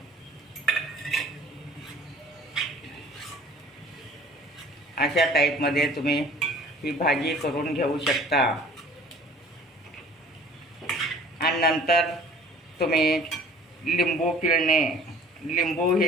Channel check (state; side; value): normal; both; correlation 0.49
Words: अशा टाईपमध्ये तुम्ही ही भाजी करून घेऊ शकता. आणि नंतर तुम्ही लिंबू पिळणे. लिंबू